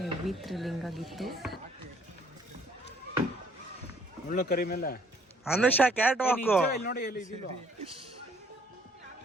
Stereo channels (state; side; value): normal; both; correlation 0.62